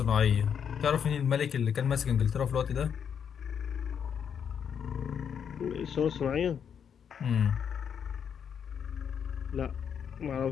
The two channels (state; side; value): quieter; right; 7.7 dB